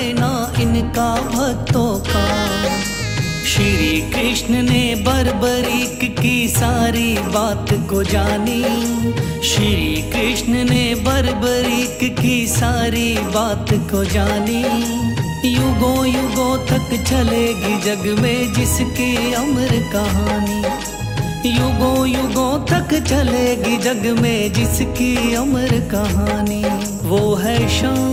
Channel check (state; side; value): identical; both; correlation 1.00